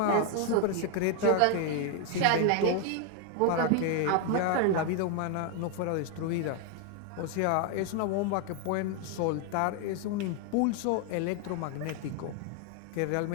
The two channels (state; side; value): different; both; correlation 0.01